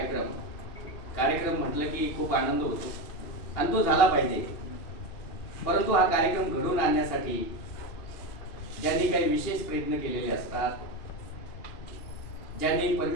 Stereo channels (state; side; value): late; right; 2.9 ms